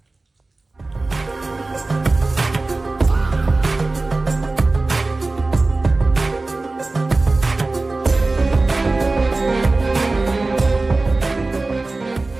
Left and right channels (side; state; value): left; quieter; 3.3 dB